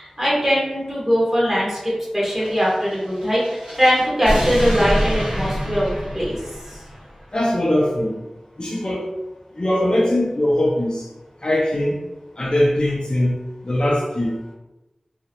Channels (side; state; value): both; normal; correlation 0.96